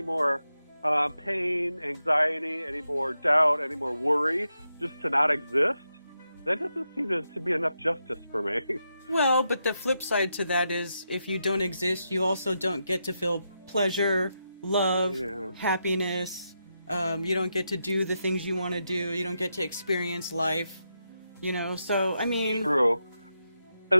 more pain, anxiety, any more doubt, any more worry, just to not exist. That doesn't seem to be enough justice for me. Well, but the flip side to that is if you don't exist, you also don't get to feel pleasure, love, happiness. You don't get to do the things you want to do. You don't get to experience life, so, I mean... True.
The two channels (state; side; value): inverted; both; correlation -0.85